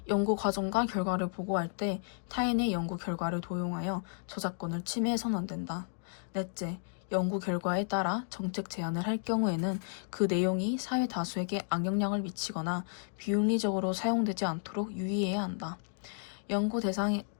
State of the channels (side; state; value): right; silent; digital silence